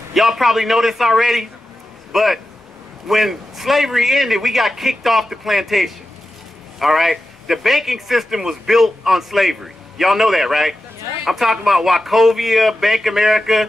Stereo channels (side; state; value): both; normal; correlation 0.92